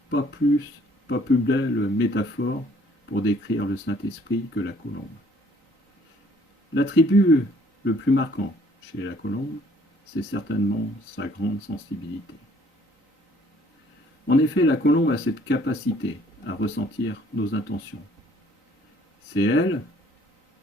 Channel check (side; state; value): both; normal; correlation 0.60